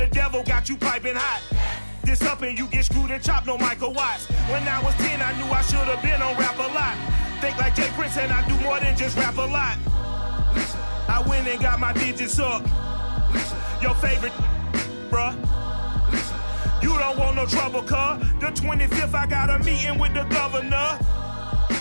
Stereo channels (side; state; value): both; inverted; correlation -1.00